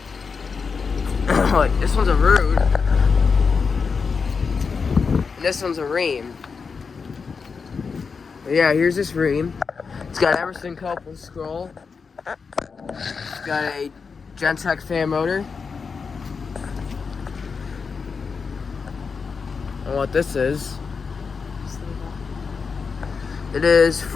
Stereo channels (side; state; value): right; quieter; 5.3 dB